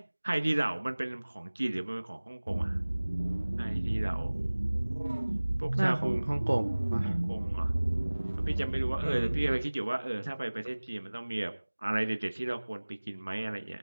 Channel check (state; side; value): inverted; both; correlation -1.00